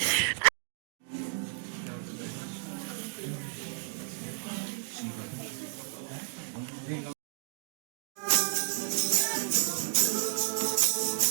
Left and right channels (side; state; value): left; silent; 56 dB below the other